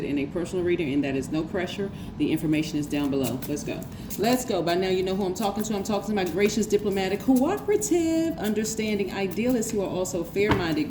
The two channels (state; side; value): identical; both; correlation 1.00